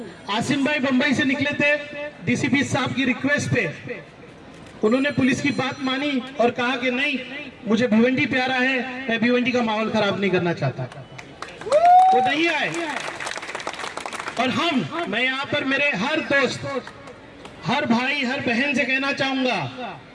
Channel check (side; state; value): both; identical; correlation 1.00